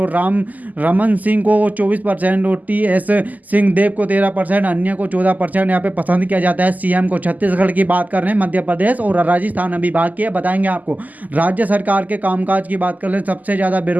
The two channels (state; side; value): late; left; 0.080 ms